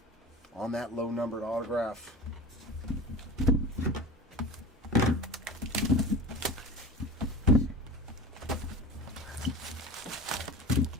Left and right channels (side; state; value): both; normal; correlation 0.34